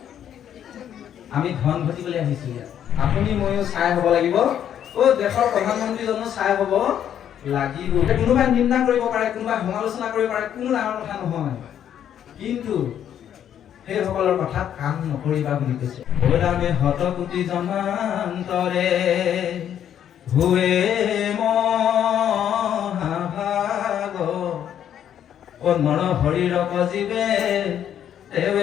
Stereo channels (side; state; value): right; quieter; 9.8 dB